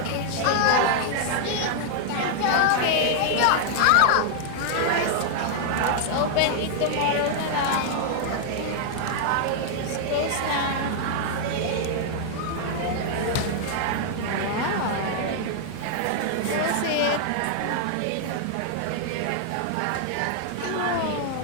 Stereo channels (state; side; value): different; both; correlation -0.01